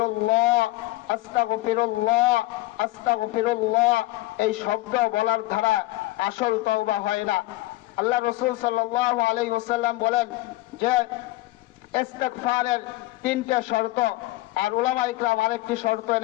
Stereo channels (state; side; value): quieter; right; 18.8 dB